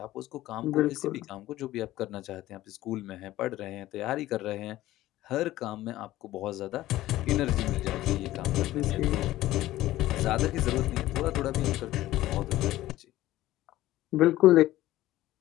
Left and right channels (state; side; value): quieter; right; 15.5 dB